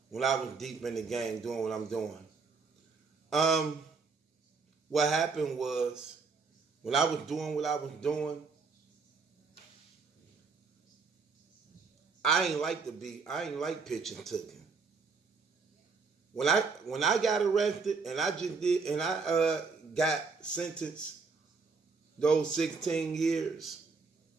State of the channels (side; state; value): left; quieter; 4.6 dB